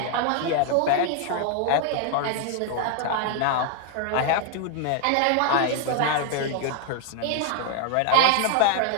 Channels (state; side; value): different; both; correlation 0.00